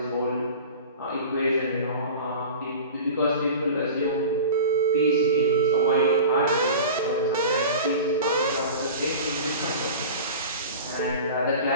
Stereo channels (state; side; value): inverted; both; correlation -0.36